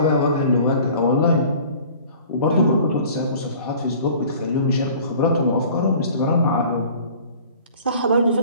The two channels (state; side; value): inverted; both; correlation -0.48